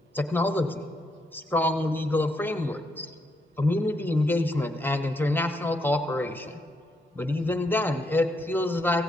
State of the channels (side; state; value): both; normal; correlation 0.78